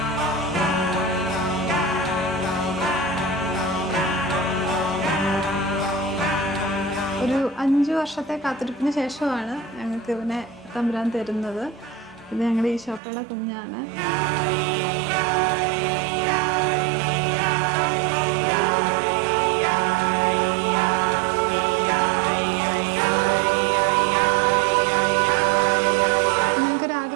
ഒരു 5 വർഷത്തെ കാത്തിരിപ്പിന് ശേഷമാണ് ഞങ്ങൾക്ക് ഇവനെ തമ്പുരാൻ തരുന്നത്. ഇത് ഞങ്ങളുടെ ഈശോപ്പയുടെ കുഞ്ഞാണ്.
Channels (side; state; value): left; drops out; at 13.0 s